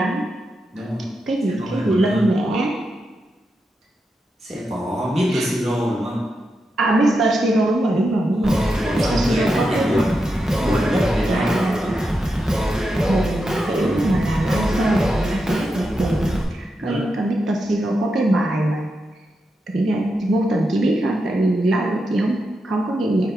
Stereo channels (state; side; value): normal; both; correlation 0.86